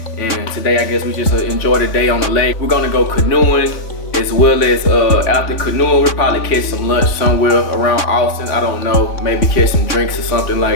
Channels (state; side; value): late; right; 3.6 ms